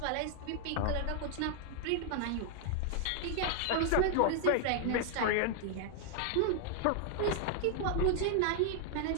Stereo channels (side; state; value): both; different; correlation 0.00